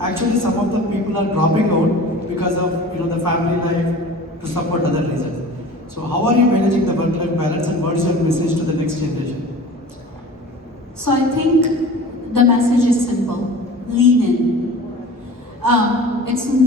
actually some of the people are dropping out because of the family life to support other reasons. So how are you managing the work-life balance, and what is your message to the next generation? So I think the message is simple: lean in.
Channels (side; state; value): both; normal; correlation 0.40